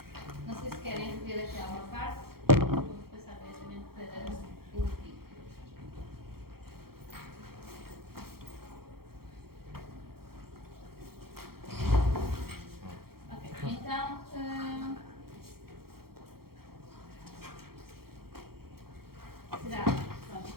Não sei se querem rever aqui alguma parte. Vou passar diretamente para o vídeo. Ok, então. Será? Pronto,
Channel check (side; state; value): left; late; 0.94 ms